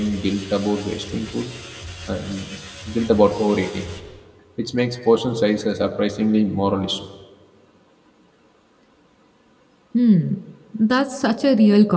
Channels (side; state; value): both; identical; correlation 1.00